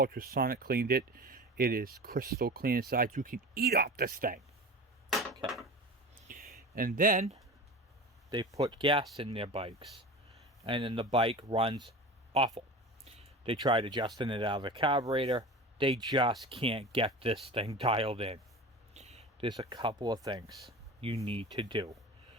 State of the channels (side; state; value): both; normal; correlation 0.33